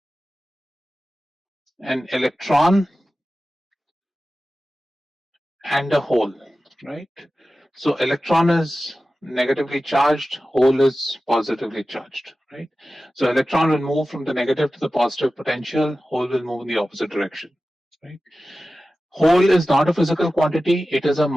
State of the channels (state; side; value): normal; both; correlation 0.95